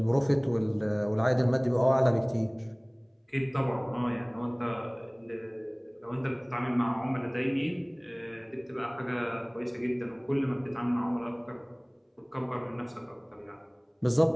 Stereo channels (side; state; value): both; identical; correlation 1.00